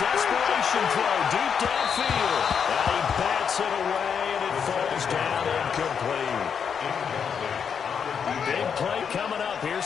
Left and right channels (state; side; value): quieter; right; 7.0 dB